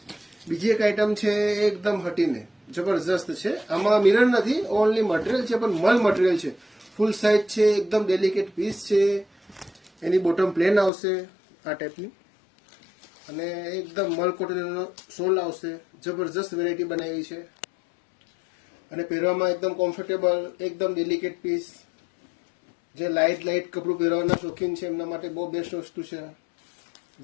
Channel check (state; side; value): drops out; right; at 10.9 s